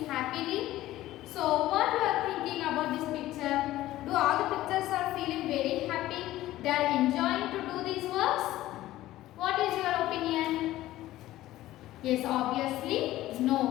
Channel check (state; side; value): quieter; right; 15.4 dB